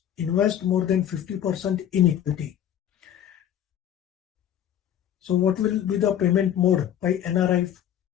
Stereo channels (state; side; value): quieter; right; 10.2 dB